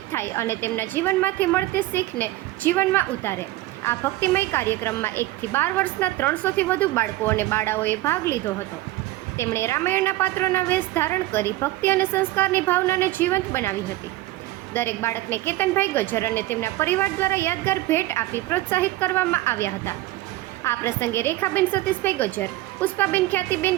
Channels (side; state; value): left; quieter; 16.9 dB